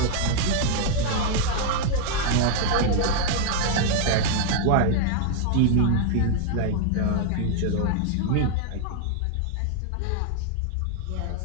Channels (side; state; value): both; different; correlation 0.00